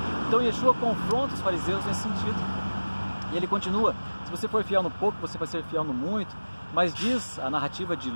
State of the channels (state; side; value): inverted; both; correlation -1.00